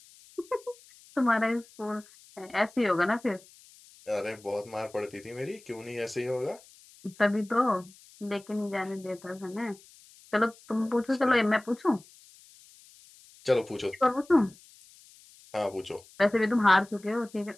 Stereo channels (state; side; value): noise; left; hiss, 25 dB below the sound